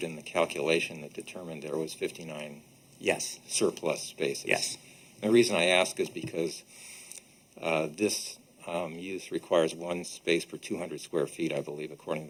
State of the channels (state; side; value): identical; both; correlation 1.00